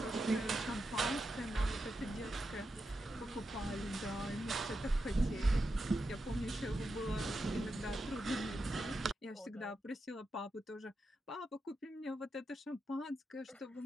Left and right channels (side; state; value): both; normal; correlation 0.87